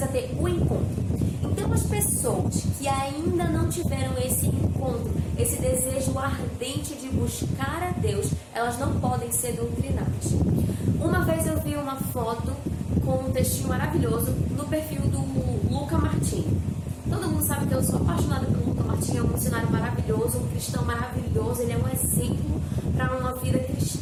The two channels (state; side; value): identical; both; correlation 1.00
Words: ter o encontro. Então, as pessoas que ainda não tiveram esse encontro, esse desejo ardente de buscar a Deus, elas não podem ser doutrinadas. Uma vez eu vi uma foto com um textinho maravilhoso no perfil do Luca Martini. Todo mundo sabe que eu sou apaixonada pelo Luca Martini, é um missionário maravilhoso, um cristão maravilhoso, ele é um exemplo para uma vida